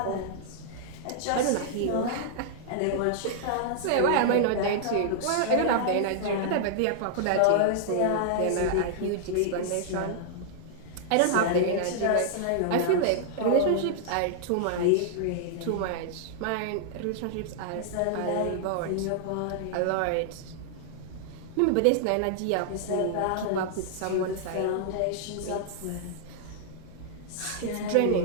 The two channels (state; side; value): different; both; correlation -0.01